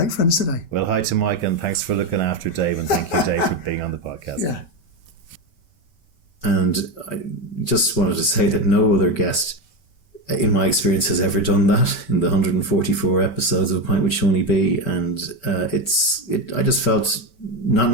friends today. Well, hi to Mike, and thanks for looking after Dave, and thank you, Dave, for being on the podcast. Yeah. And I just wanted to say that no other guest, in my experience, has ever done that in the 144 episodes of A Pint with Seaniebee. And I just felt,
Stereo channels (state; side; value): late; right; 5.2 ms